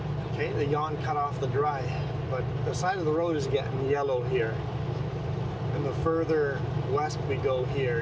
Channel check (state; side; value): identical; both; correlation 1.00